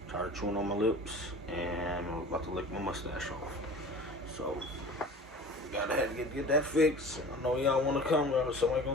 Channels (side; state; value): both; normal; correlation 0.40